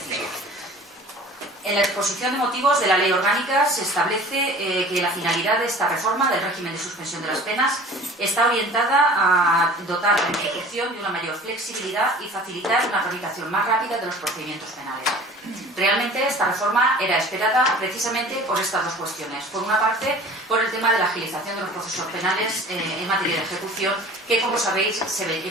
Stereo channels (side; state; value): both; normal; correlation 0.44